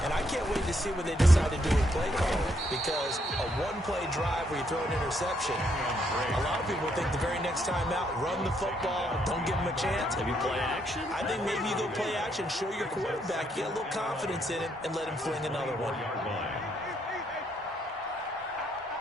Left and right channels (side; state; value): both; normal; correlation 0.73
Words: And I can't wait to see what they decide to do with play calling. Because a 1-play drive where you throw an interception, a lot of people think the very next time out, run the football, don't give them a chance. Maybe play action? I think maybe you go play action, show your quarterback, get a little confidence in him, and let him fling another one.